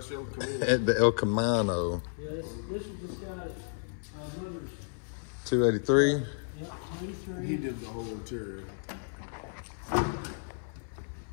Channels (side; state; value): right; silent; 56 dB below the other